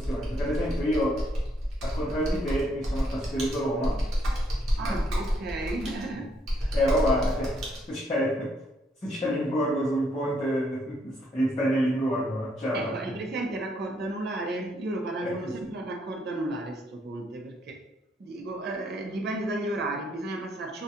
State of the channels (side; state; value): both; normal; correlation 0.72